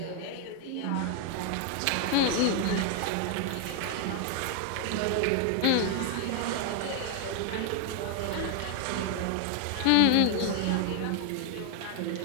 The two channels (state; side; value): different; both; correlation 0.00